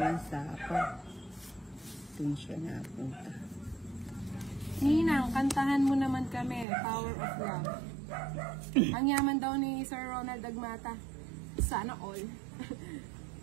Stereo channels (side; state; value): left; drops out; at 6.7 s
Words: sapa. Doon siya napunta. Ninang, kantahan mo naman kami. Power of Love. Ang yaman daw ni Sir Ronald Agmata. Sana all.